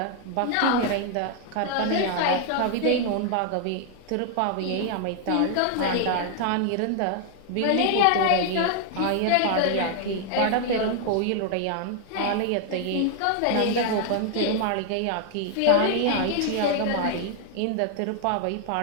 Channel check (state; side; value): different; both; correlation 0.00